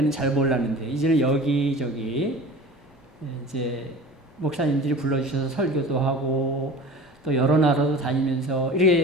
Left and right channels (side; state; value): both; normal; correlation 0.38